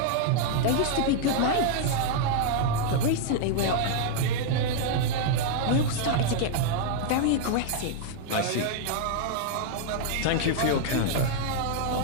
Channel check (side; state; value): both; different; correlation -0.01